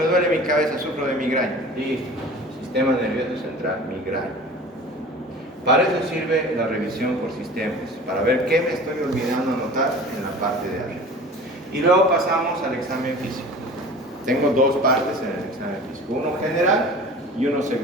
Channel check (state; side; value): normal; both; correlation 0.40